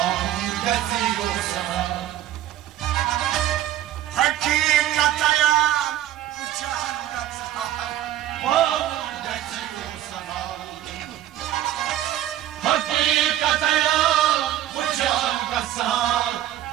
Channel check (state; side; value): quieter; left; 12.5 dB